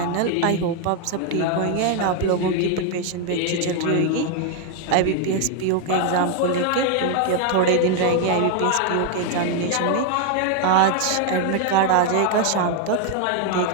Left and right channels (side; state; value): both; different; correlation 0.01